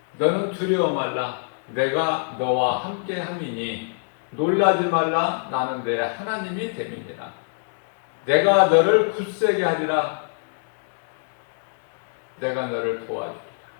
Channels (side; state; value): right; silent; digital silence